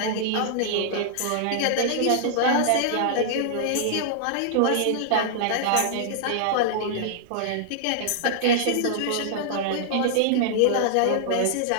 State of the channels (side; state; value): both; different; correlation -0.01